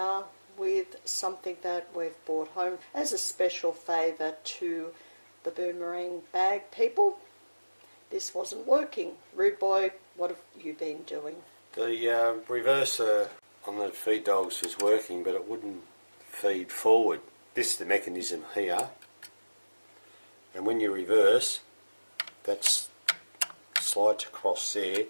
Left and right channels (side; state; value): both; inverted; correlation -1.00